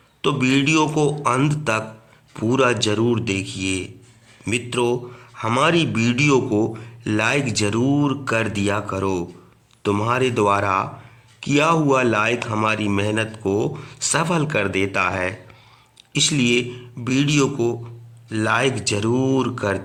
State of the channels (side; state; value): both; identical; correlation 1.00